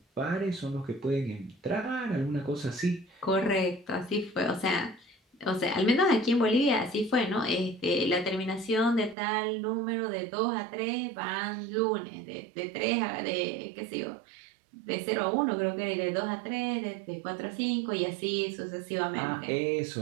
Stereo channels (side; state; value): left; drops out; at 9.2 s